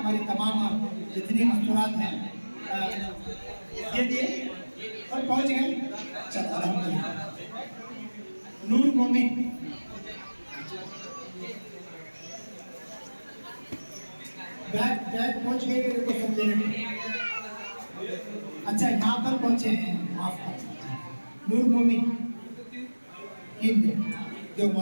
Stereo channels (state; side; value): inverted; both; correlation -1.00